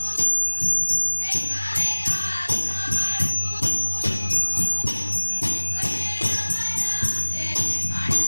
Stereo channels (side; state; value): both; inverted; correlation -1.00